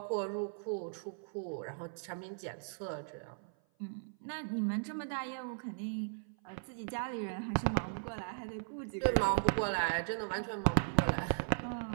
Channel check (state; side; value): silent; left; 53 dB below the other